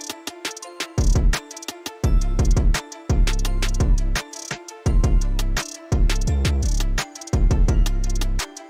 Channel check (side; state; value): both; identical; correlation 1.00